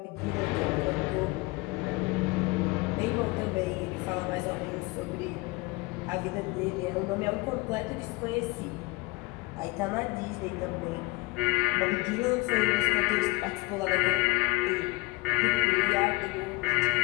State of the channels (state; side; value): quieter; right; 23.4 dB